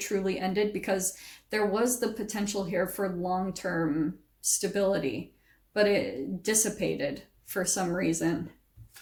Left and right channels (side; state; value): both; identical; correlation 1.00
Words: ended, because there was the potential here for long-term stability, but it dissipated for some reason.